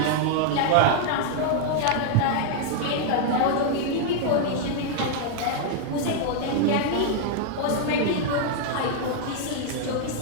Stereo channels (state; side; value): different; both; correlation 0.00